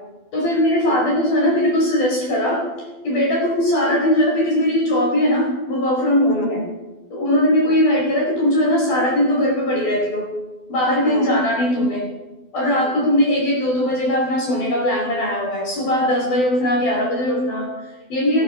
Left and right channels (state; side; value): late; right; 12 ms